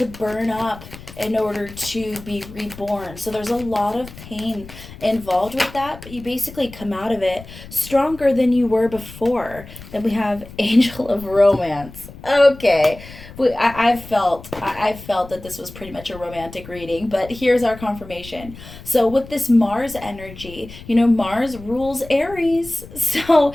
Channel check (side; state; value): left; noise; rumble, 16 dB below the sound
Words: burn up in order to be reborn. So there's a lot of pain involved with that, but you basically come out of it stronger than you were before. Then we have Angel of Romance. Okay, I felt that this was pretty much a romantic reading, but here's our confirmation. So with this Mars energy, Mars rules Aries. So